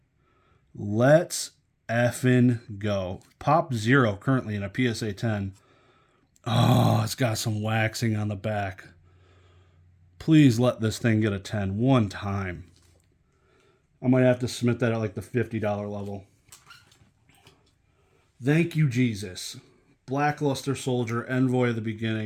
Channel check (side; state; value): both; identical; correlation 1.00